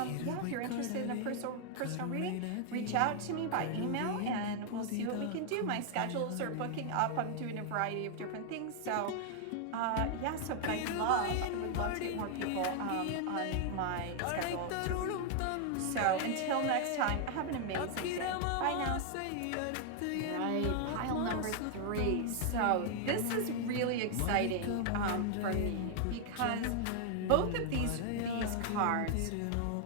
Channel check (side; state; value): both; different; correlation 0.00